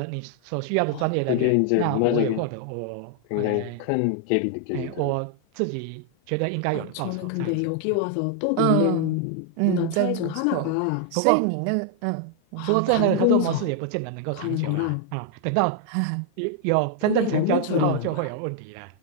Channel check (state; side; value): different; both; correlation 0.00